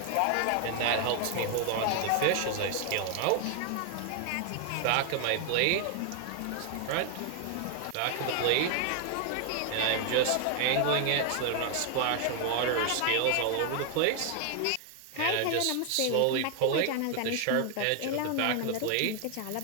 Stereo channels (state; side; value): different; both; correlation 0.00